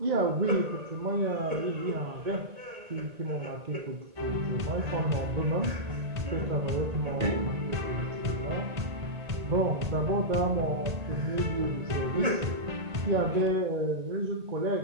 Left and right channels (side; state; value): left; late; 1.9 ms